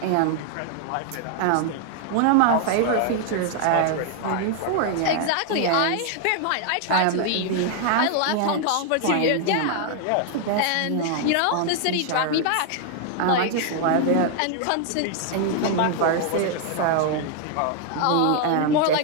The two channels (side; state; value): both; different; correlation 0.00